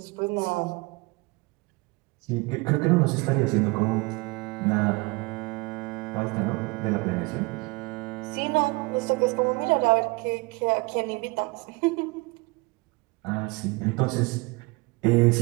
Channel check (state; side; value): quieter; left; 25.6 dB